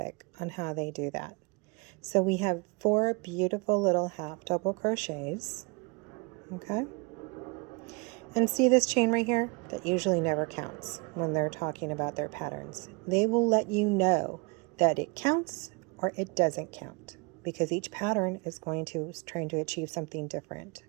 on how they do that. So we have 4 beautiful little half double crochets. Okay? And see this chain right here? That usually never counts when they're talking about their patterns. They will let you know that it counts or it doesn't count because each pattern is trying to achieve something different.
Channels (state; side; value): quieter; left; 30.7 dB